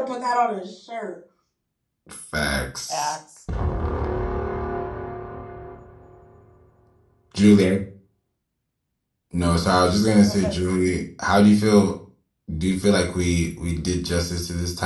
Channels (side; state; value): both; identical; correlation 1.00